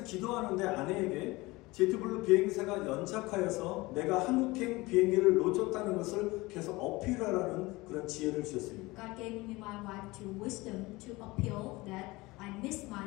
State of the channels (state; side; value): quieter; right; 21.7 dB